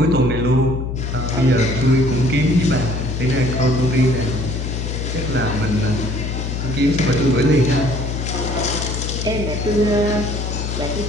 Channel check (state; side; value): noise; left; hum, 4 dB below the sound